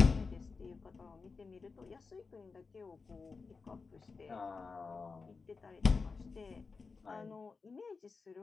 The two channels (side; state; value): right; quieter; 4.6 dB